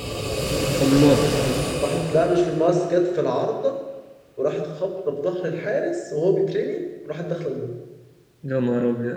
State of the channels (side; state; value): both; identical; correlation 1.00